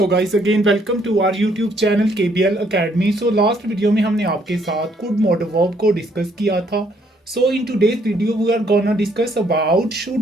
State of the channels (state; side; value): normal; both; correlation 0.68